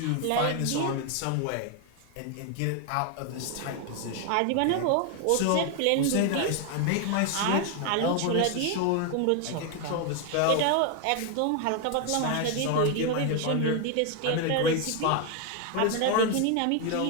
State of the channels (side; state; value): both; different; correlation 0.01